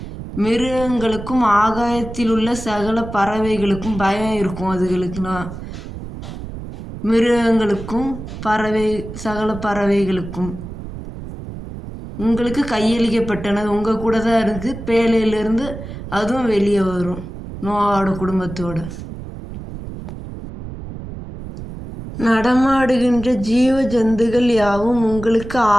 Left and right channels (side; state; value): right; noise; rumble, 10 dB below the sound